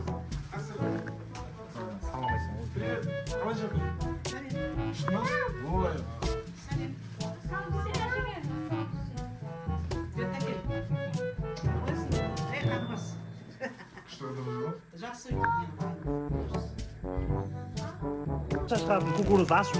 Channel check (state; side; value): identical; both; correlation 1.00